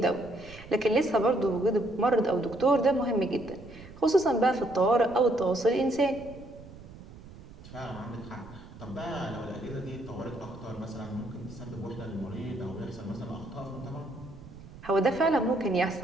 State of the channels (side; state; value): right; noise; rumble, 17 dB below the sound